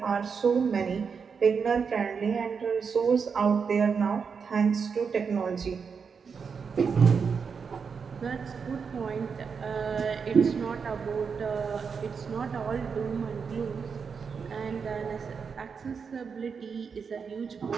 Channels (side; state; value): left; quieter; 5.9 dB